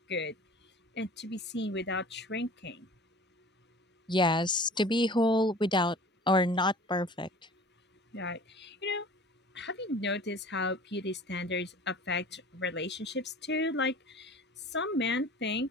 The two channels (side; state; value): both; normal; correlation 0.43